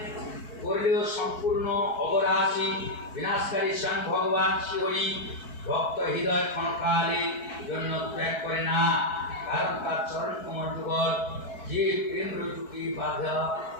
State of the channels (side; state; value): right; late; 4.6 ms